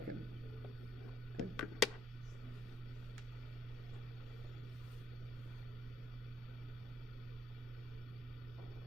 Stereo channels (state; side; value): normal; both; correlation 0.69